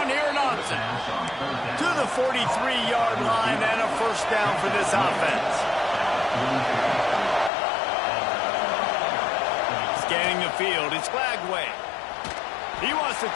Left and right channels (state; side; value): drops out; right; at 7.5 s